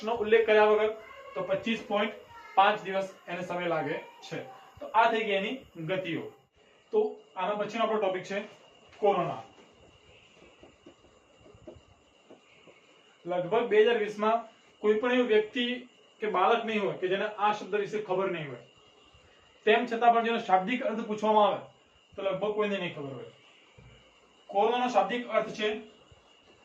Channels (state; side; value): identical; both; correlation 1.00